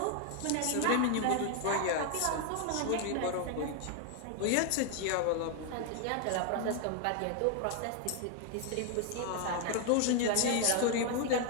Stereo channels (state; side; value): different; both; correlation 0.00